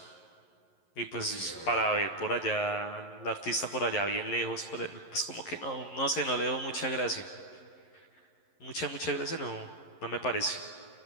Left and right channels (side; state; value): right; late; 11 ms